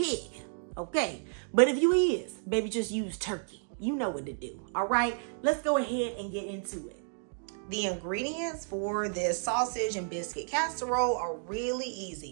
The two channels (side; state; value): left; silent; digital silence